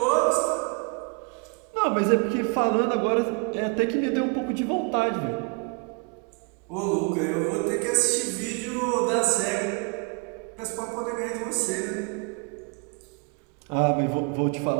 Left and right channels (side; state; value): left; quieter; 34.7 dB